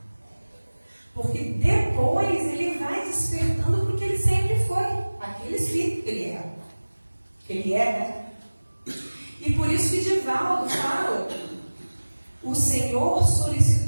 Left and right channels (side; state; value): both; inverted; correlation -1.00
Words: Porque depois ele vai despertando porque ele sempre foi aquele espírito que ele é. Que ele é, né? E por isso que Divaldo fala, o Senhor